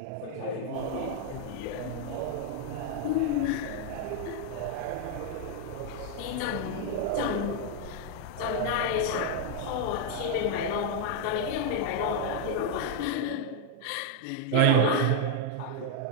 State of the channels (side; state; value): both; different; correlation 0.00